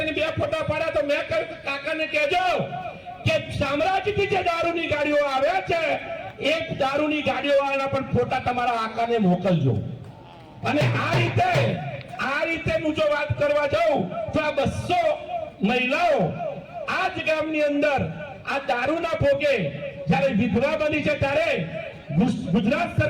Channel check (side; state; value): both; identical; correlation 1.00